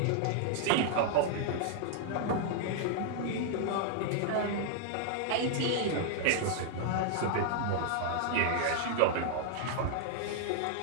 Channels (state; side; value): different; both; correlation -0.01